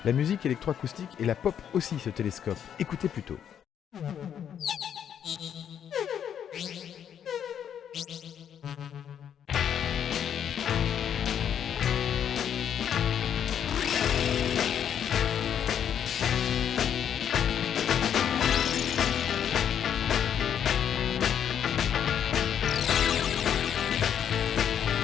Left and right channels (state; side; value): quieter; right; 9.0 dB